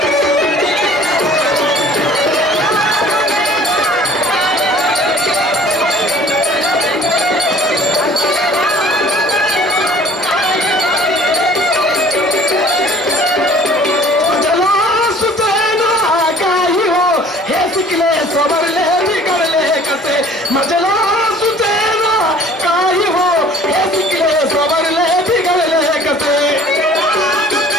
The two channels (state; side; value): normal; both; correlation 0.50